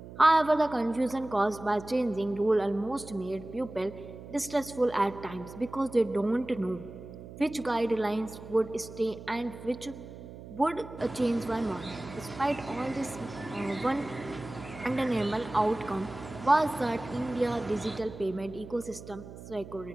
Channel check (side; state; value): right; noise; hum, 14 dB below the sound